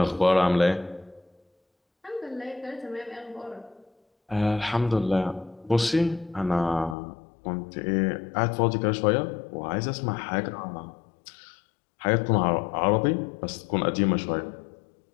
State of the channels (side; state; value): right; drops out; at 7.0 s